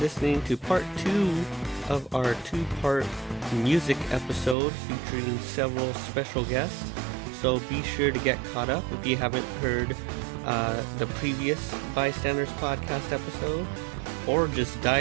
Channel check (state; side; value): drops out; left; at 4.5 s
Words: to part 2 of our 2-part music episode featuring several special guests. So be sure to get caught up if you haven't heard the previous Bystanders Podcast episode, or just